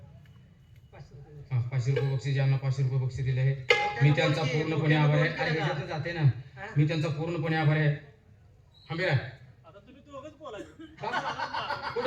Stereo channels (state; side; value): identical; both; correlation 1.00